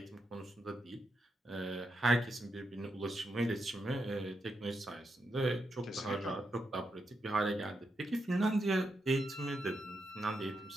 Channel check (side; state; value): both; normal; correlation 0.83